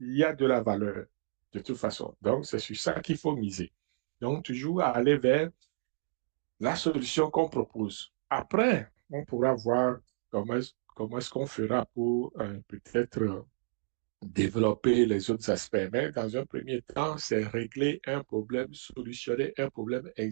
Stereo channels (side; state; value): left; silent; digital silence